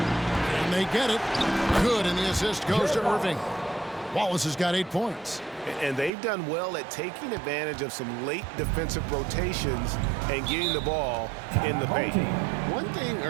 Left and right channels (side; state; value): left; drops out; at 6.1 s